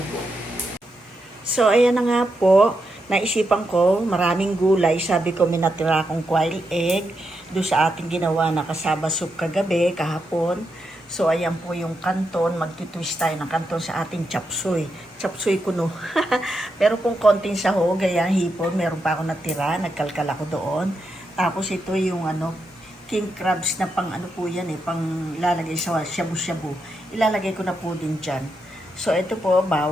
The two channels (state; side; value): normal; both; correlation 0.84